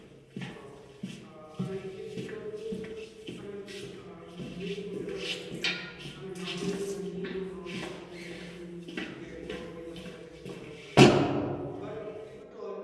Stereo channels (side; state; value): both; identical; correlation 1.00